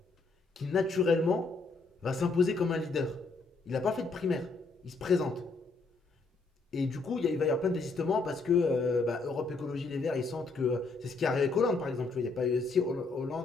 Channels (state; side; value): quieter; right; 3.9 dB